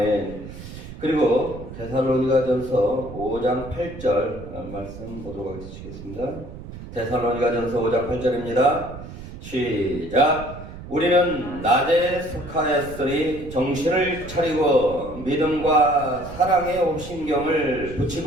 그리고 데살로니가전서 5장 8절 말씀 보도록 하겠습니다. 데살로니가전서 5장 8절입니다. 시작. 우리는 낮에 속하였으니 정신을 차리고 믿음과 사랑의 옥신경을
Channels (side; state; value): right; noise; rumble, 13 dB below the sound